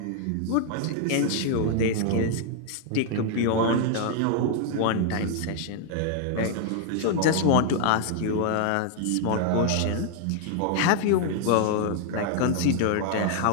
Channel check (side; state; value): both; different; correlation 0.00